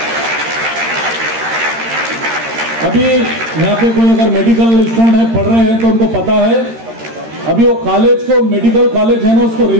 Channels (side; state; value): left; late; 13 ms